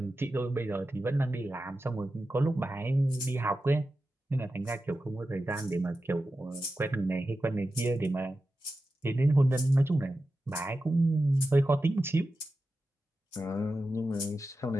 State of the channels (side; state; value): both; normal; correlation 0.92